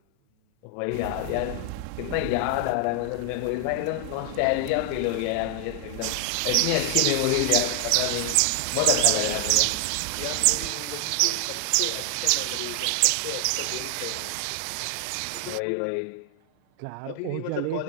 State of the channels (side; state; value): both; different; correlation 0.00